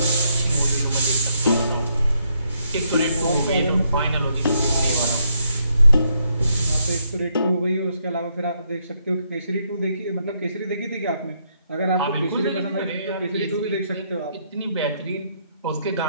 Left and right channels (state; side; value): inverted; both; correlation -0.75